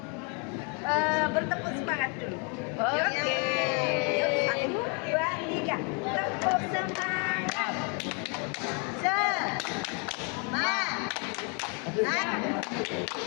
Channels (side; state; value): right; quieter; 36.0 dB